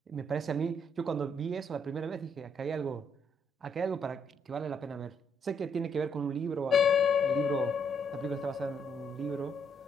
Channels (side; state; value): both; normal; correlation 0.73